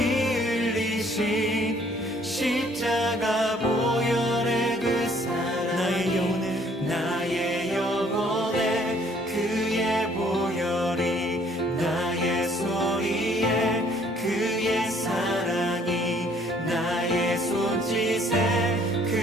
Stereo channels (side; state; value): both; normal; correlation 0.61